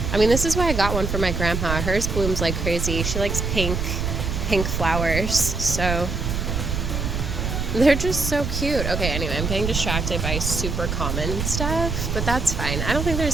I mean, this is why I got one for my grandma. Hers blooms like crazy. She likes pink flowers, so they're just so cute. Okay, anyway, I'm getting distracted by super common stuff, but that's fine. I don't think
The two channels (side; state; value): right; noise; rumble, 2 dB below the sound